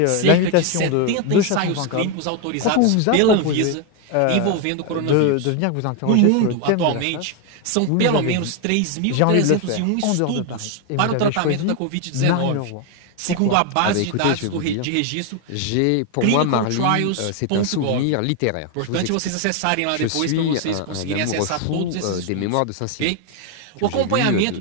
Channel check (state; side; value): different; both; correlation 0.01